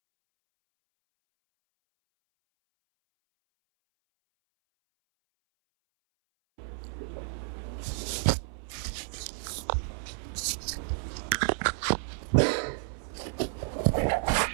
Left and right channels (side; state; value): left; silent; 57 dB below the other